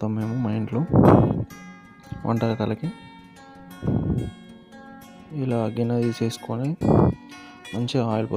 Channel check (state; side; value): identical; both; correlation 1.00